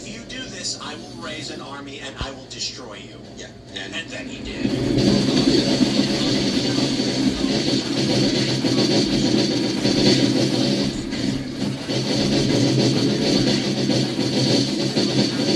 you do this, I will raise an army and I will destroy you. Yeah. And then he did.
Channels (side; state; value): both; identical; correlation 1.00